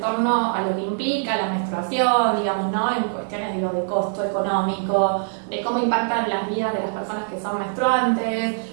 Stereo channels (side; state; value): left; silent; 63 dB below the other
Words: a lo que implica la menstruación, digamos, ¿no? En cuestiones de costo económico, de cómo impactan las vidas de las personas que son